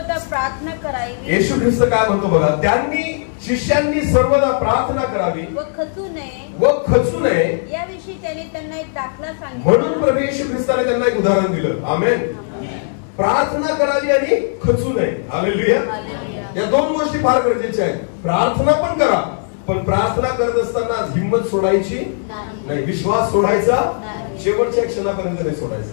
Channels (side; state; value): right; silent; digital silence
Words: प्रार्थना करावी. येशू ख्रिस्त काय म्हणतो बघा, त्यांनी शिष्यांनी सर्वदा प्रार्थना करावी व खचू नये याविषयी त्याने त्यांना एक दाखला सांगितला. म्हणून प्रभू येशू ख्रिस्ताने त्यांना एक उदाहरण दिलं. आमेन. प्रार्थना करावी आणि खचू नये. हालेलुया. या दोन गोष्टी फार गरजेच्या आहेत. प्रार्थना पण करा, पण प्रार्थना करत असताना हिंमत सोडायची नाही, विश्वास सोडायचा शेवटच्या क्षणापर्यंत नाही